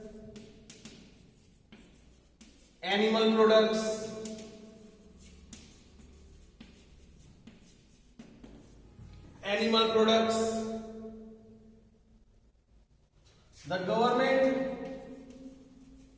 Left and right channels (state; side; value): identical; both; correlation 1.00